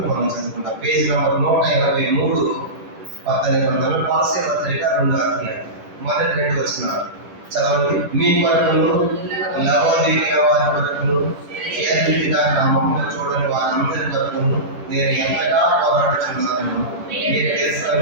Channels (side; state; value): left; late; 10 ms